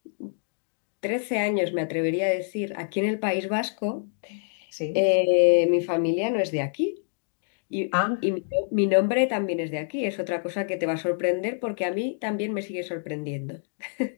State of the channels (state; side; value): silent; right; digital silence